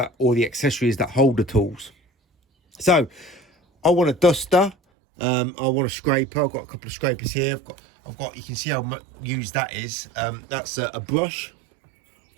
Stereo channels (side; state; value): left; drops out; at 4.8 s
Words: or the accessories that hold the tools. So I want a duster. I want a scraper. I've got a couple of scrapers here. I've got. You can see how much used that is. That's a brush. I've